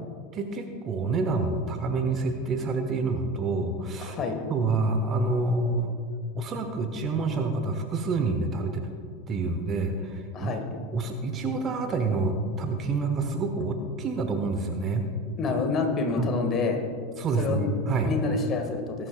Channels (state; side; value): normal; both; correlation 0.35